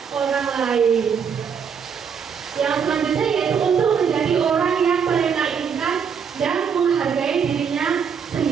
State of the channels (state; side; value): quieter; left; 6.8 dB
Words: orang lain. Yang selanjutnya yaitu untuk menjadi orang yang mereka inginkan dan menghargai dirinya